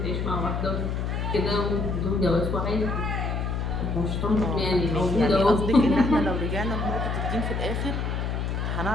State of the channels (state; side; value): noise; left; hum, 1 dB below the sound